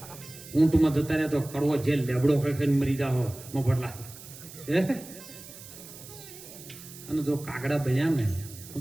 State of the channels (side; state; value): right; noise; hiss, 16 dB below the sound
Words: ઊંટમાં જતા રહ્યા તો કડવો જેલ લેબડો ખેંચીને મરી જાઓ મફતલા. અને જો કાગડા બન્યા ને